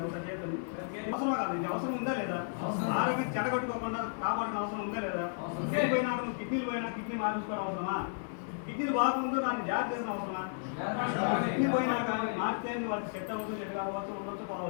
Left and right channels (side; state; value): right; silent; digital silence